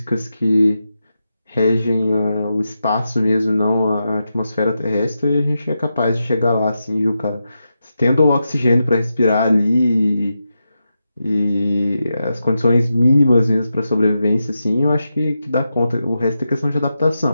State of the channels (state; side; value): inverted; both; correlation -0.88